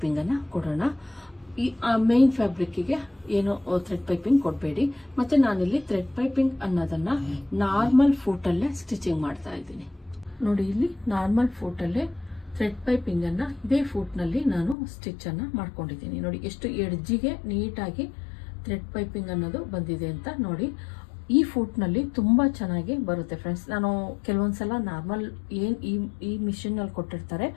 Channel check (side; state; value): right; drops out; at 14.8 s